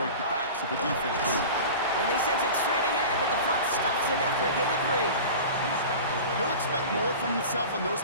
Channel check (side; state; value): both; inverted; correlation -0.35